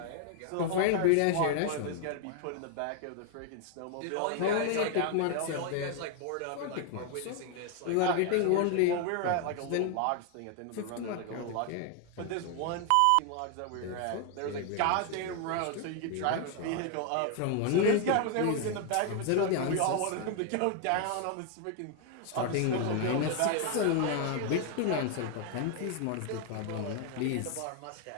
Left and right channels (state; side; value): different; both; correlation 0.00